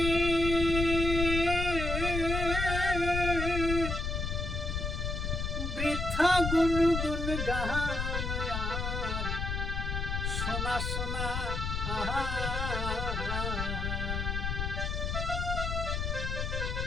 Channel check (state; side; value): noise; left; rumble, 2 dB below the sound